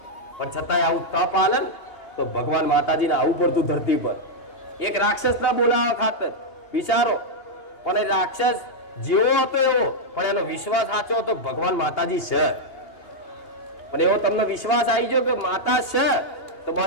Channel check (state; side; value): late; right; 2.8 ms